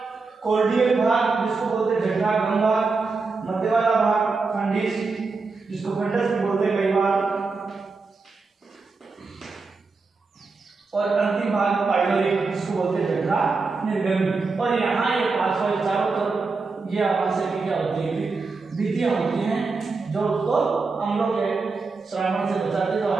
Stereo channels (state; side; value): quieter; left; 4.2 dB